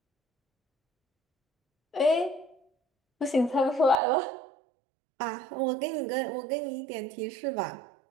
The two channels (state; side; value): drops out; left; at 4.0 s